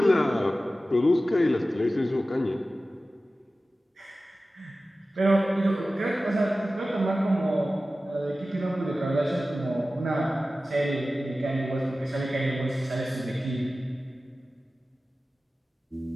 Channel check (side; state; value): both; normal; correlation 0.95